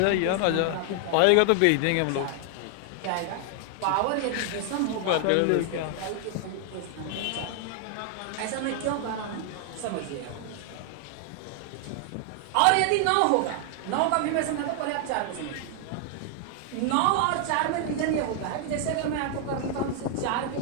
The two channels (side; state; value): both; different; correlation 0.00